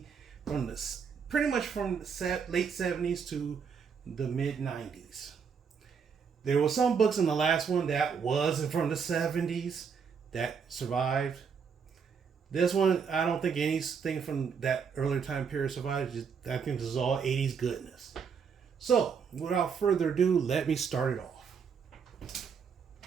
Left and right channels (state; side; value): quieter; left; 6.3 dB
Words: from the pretty much from the late 70s to the mid 90s. There were some books in the last one that wasn't from the 70s that survived. This one, I don't think anything from that earlier time period survived. I think this is all 80s goodness. So, without further ado, let me start it off.